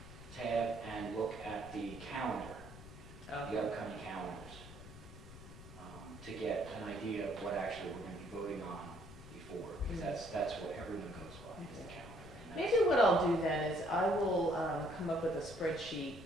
tab, and look at the calendar, the upcoming calendars, to get an idea of what actually we're going to be voting on before, because that's what everyone goes by, is the calendar. And that's- Maybe what I'll do then is I will come up with a spreadsheet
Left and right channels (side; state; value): left; noise; rumble, 15 dB below the sound